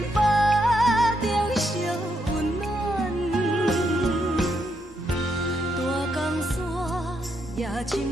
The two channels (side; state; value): both; normal; correlation 0.79